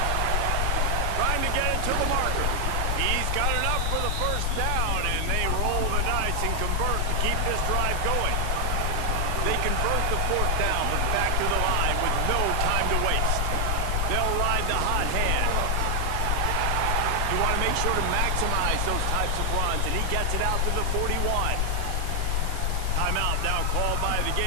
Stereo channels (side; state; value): both; different; correlation 0.00